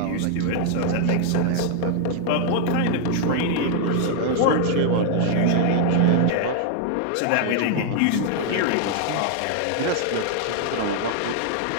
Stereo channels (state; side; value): different; both; correlation 0.00